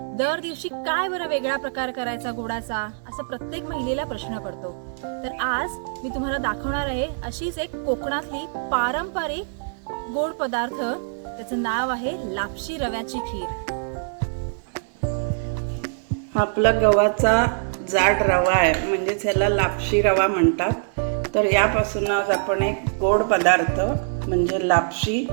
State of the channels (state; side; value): silent; left; 63 dB below the other